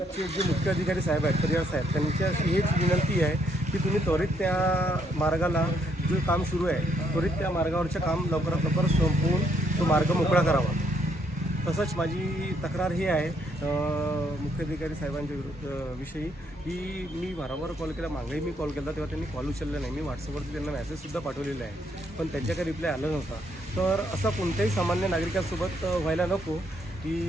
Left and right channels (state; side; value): normal; both; correlation 0.72